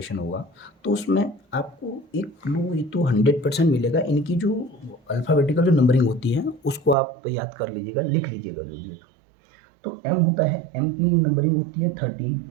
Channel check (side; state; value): left; drops out; at 7.0 s